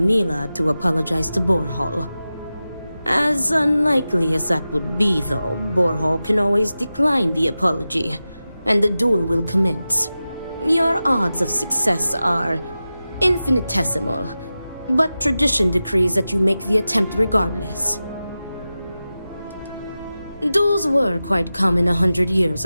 to apologize to Borhall. As unlikely as that would be, though, Borhall can always decline the apology, and the duel will commence. Your odds of success are infinitesimal, but tradition decrees that you make the attempt regardless. Duels were quite common 100 years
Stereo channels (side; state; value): both; inverted; correlation -0.94